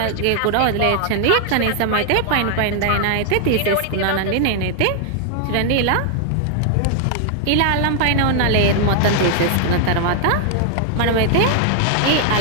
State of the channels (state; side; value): different; both; correlation 0.00